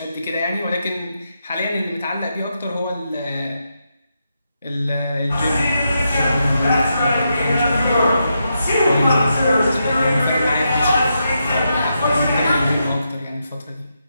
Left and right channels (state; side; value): inverted; both; correlation -0.84